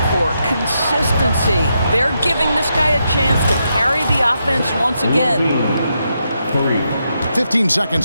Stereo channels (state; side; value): inverted; both; correlation -0.83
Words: for. Consistency. They're giving this guy a chance to carry the offense once again. 15